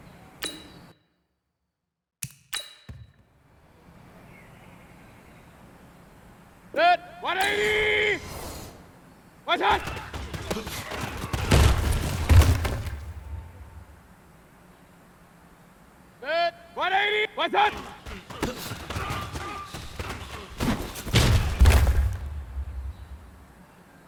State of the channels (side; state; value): both; identical; correlation 1.00